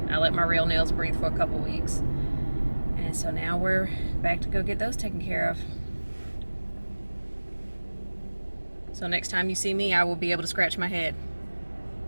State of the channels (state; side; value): inverted; both; correlation -1.00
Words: I let my real nails breathe for a couple weeks, and so now we're back to go get those taken care of. So next time you see me, I will be able to scratch my head.